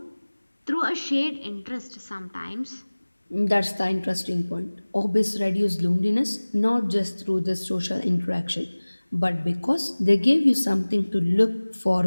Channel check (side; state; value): both; inverted; correlation -1.00